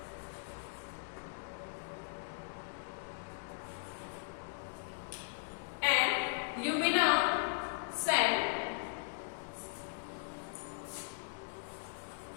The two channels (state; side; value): silent; right; digital silence